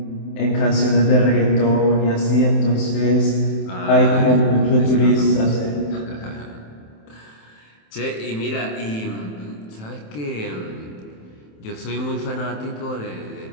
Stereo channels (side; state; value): right; late; 27 ms